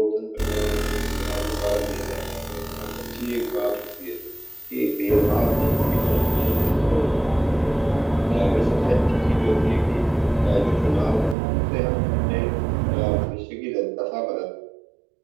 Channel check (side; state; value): left; drops out; at 11.4 s